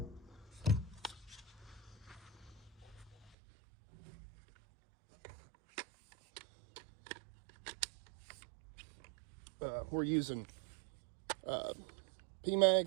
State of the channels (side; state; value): left; drops out; at 3.4 s